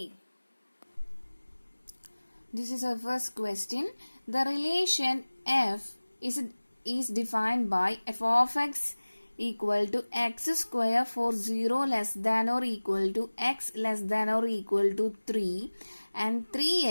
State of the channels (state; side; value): inverted; both; correlation -1.00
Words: This is our first question. The relation f is defined by f of x equal to x square for 0 less than or equal to x less than or equal to 3 and